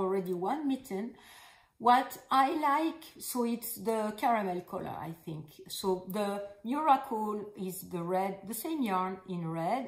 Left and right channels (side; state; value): both; identical; correlation 1.00